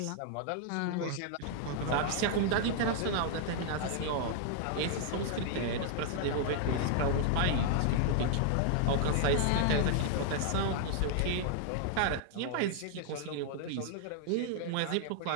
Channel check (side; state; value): both; different; correlation 0.00